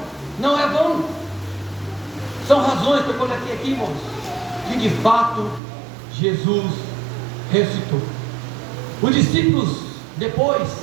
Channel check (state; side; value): drops out; left; at 5.6 s